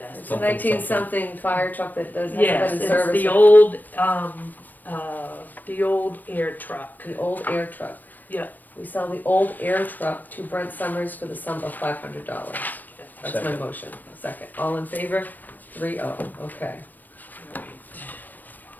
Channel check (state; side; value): late; right; 0.088 ms